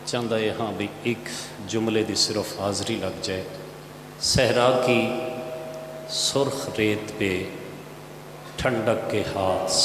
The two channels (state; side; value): identical; both; correlation 1.00